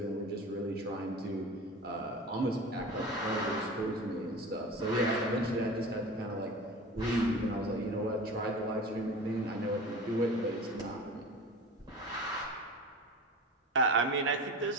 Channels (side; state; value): both; normal; correlation 0.34